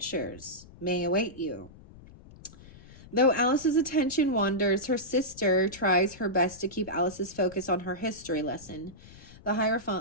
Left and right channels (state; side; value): noise; left; rumble, 20 dB below the sound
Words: may await you? Though Alice's attention wanders, her sister tries her best to keep Alice's focus on her history lesson. The